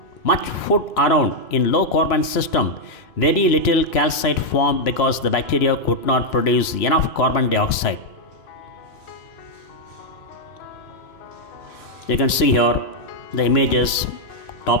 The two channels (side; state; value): right; late; 2.9 ms